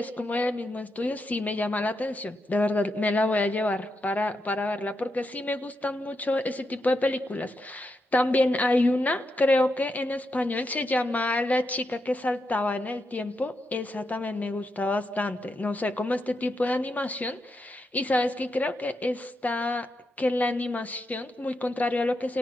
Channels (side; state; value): both; normal; correlation 0.84